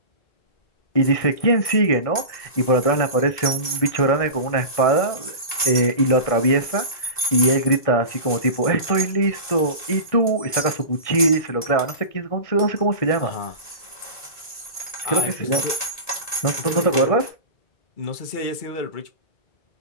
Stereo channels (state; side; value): late; right; 1.9 ms